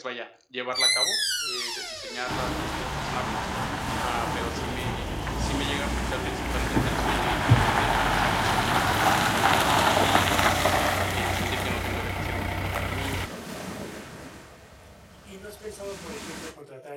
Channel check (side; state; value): both; identical; correlation 1.00